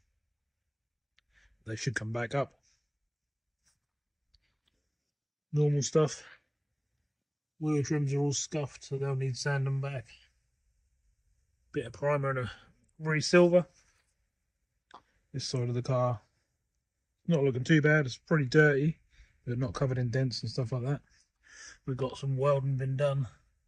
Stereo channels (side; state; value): both; identical; correlation 1.00